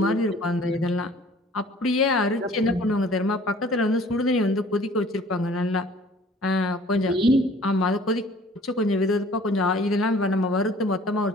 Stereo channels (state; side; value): normal; both; correlation 0.52